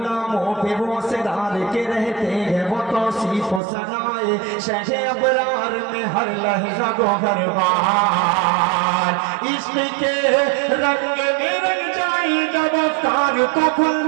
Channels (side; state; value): left; drops out; at 3.6 s